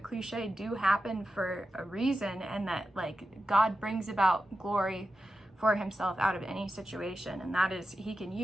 cliche, do happen for a reason, and that like God brings about glory for himself out of any situation, and that is, he can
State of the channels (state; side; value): normal; both; correlation 0.91